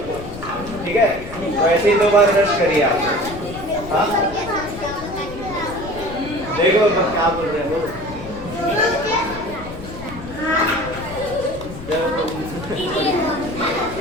को, ठीक है? तो ऐसे ही 2 बार ब्रश करिए आप। हाँ देखो क्या बोल रहे हैं वो।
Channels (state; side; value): noise; left; rumble, 13 dB below the sound